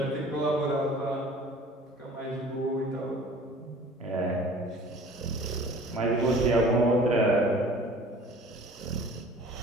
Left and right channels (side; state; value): both; normal; correlation 0.48